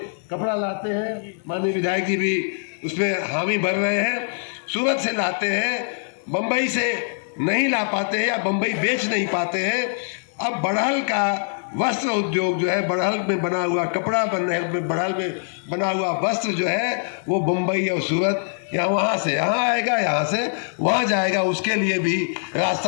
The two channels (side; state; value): right; silent; digital silence